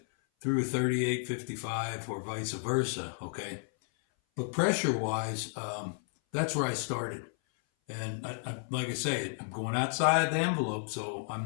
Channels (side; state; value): right; silent; 56 dB below the other